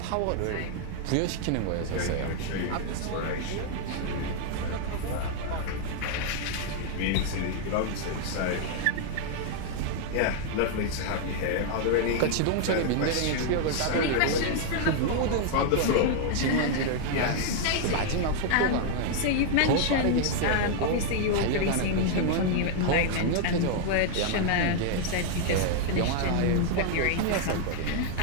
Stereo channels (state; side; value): different; both; correlation 0.00